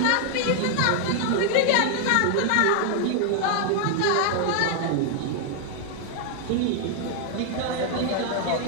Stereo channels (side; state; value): both; different; correlation 0.00